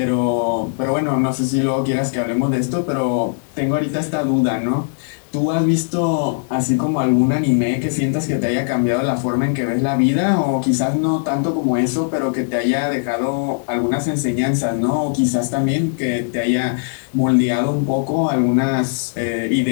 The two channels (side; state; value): right; silent; digital silence